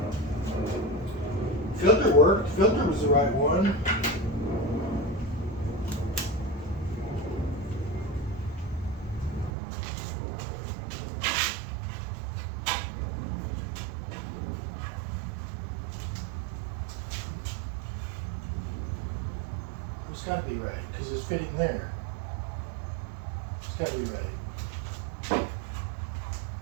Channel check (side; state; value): left; drops out; at 9.5 s